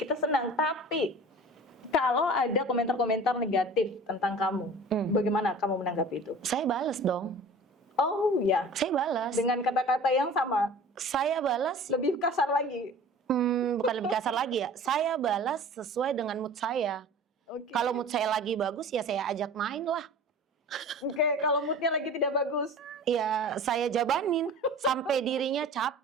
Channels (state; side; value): normal; both; correlation 0.41